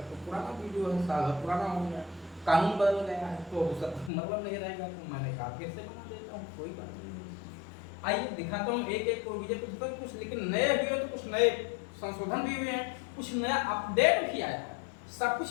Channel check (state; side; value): drops out; right; at 4.1 s